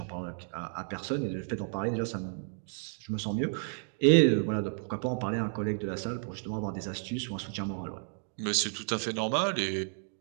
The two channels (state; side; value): silent; left; digital silence